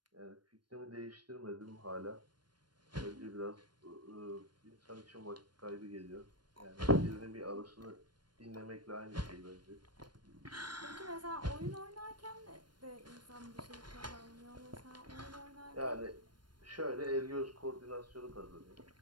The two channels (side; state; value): left; late; 0.71 ms